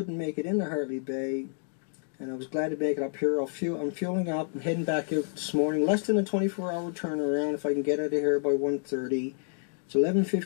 make it into Hartley Bay, and I was glad to make it up here. I'm fueling up and heading back out this morning. Less than a 24-hour turnaround if I can get out of here by 1:30. It's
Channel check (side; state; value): right; silent; 56 dB below the other